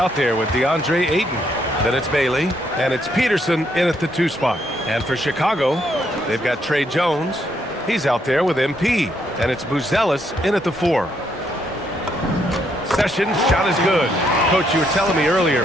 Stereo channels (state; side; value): normal; both; correlation 0.74